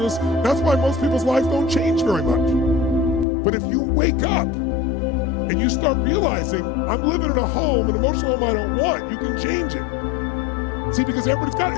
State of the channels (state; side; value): drops out; right; at 3.2 s